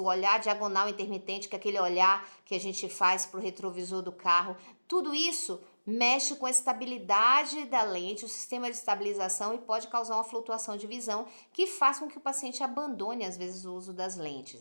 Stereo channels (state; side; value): inverted; both; correlation -1.00